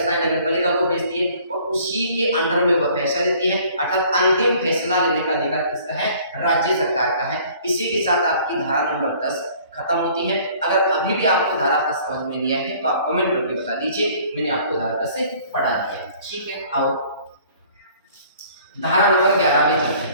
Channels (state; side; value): inverted; both; correlation -0.54